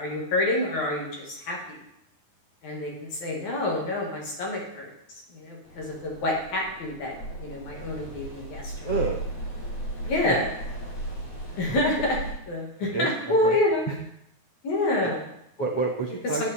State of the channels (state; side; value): late; right; 9.4 ms